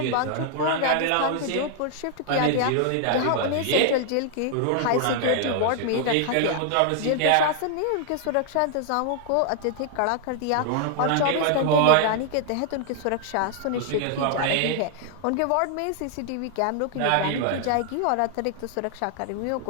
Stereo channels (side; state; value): both; different; correlation 0.00